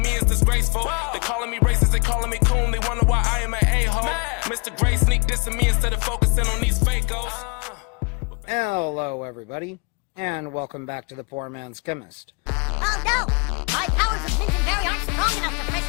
me, it's disgraceful. They calling me racist, they calling me coon, they wonder why I am an a-hole. Mr. Gray sneak dissing me instead of focusing on these fakos. Hello, everybody, and welcome back to the Poor Man's Chemist. Oh no! My powers of Lincolnberry aren't strong enough to press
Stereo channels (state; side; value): quieter; right; 32.8 dB